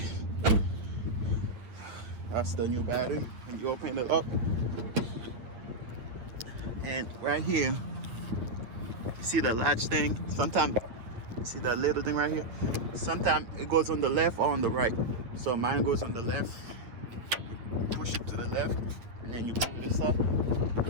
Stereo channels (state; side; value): late; left; 9.1 ms